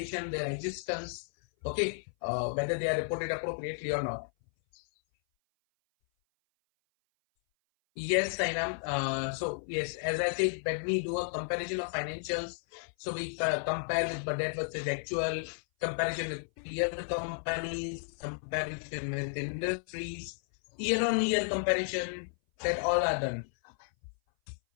their existence. Okay, whether they are reported appropriately or not. Yes, Sainam. So yes, as I said, when we do a comparison of financials, so we compare with budget versus actual, comparison with peer companies, comparison with industries, year-on-year comparison, that all are done.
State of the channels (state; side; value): silent; right; 56 dB below the other